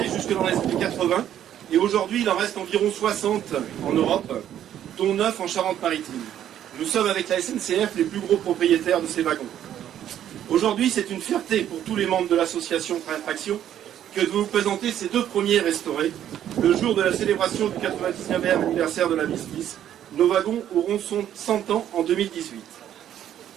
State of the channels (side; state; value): left; quieter; 10.8 dB